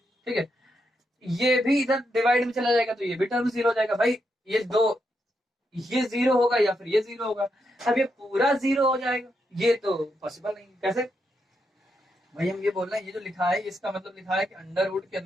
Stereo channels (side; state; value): both; normal; correlation 0.82